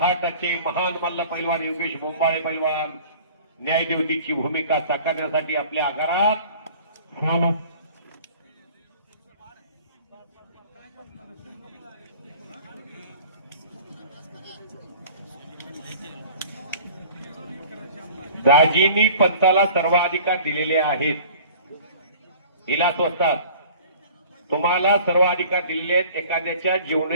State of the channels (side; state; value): both; inverted; correlation -0.46